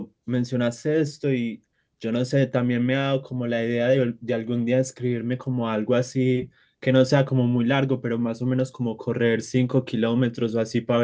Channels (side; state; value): both; identical; correlation 1.00